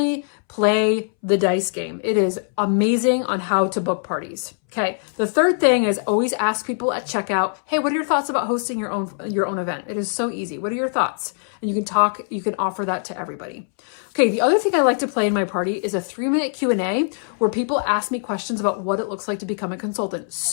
play the dice game. It is amazing on how to book parties. Okay, the third thing is always ask people at checkout, hey, what are your thoughts about hosting your own event? It is so easy. What are your thoughts? And you can offer that to everybody. Okay, the other thing I like to play in my party is a 3-minute Q&A where people ask me questions about what it looks like to become a consultant.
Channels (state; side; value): silent; right; 63 dB below the other